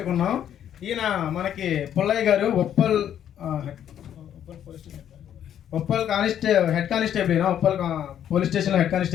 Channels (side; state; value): right; quieter; 10.1 dB